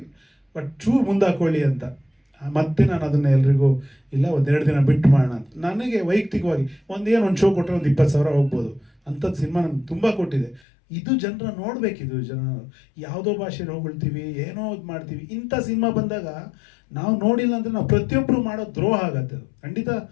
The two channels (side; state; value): right; drops out; at 10.6 s